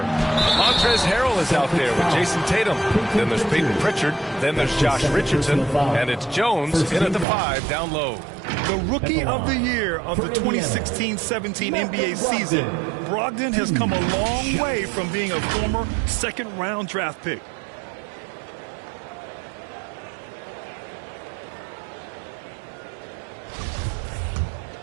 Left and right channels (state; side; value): drops out; left; at 7.2 s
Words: Montrezl Harrell is out there with Jason Tatum. Then there's Peyton Pritchard. Then there's Josh Richardson. And it's Jones in at the 5 down low. The Rookie of the Year of the 2016-17 NBA season, Brogdon has come a long way from being a former second-round draft pick.